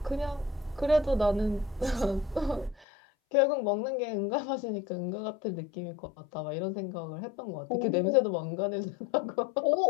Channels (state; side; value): drops out; right; at 2.9 s